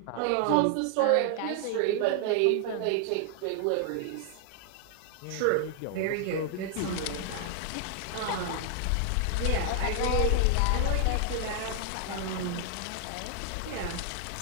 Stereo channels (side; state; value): both; different; correlation 0.00